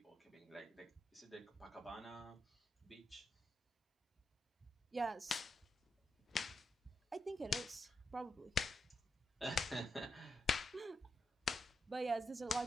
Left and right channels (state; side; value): normal; both; correlation 0.86